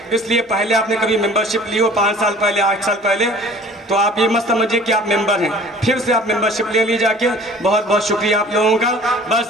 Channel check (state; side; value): normal; both; correlation 0.48